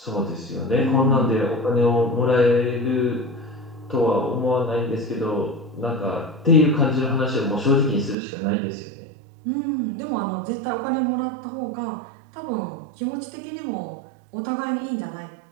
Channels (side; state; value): left; drops out; at 8.2 s